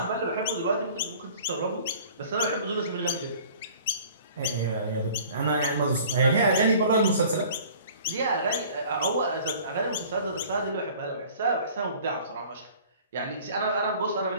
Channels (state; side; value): inverted; both; correlation -0.49